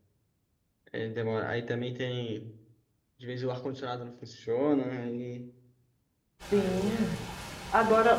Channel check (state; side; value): identical; both; correlation 1.00